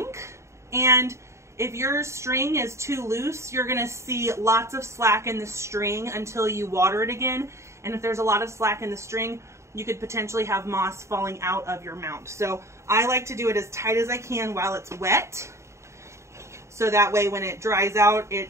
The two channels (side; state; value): left; late; 0.14 ms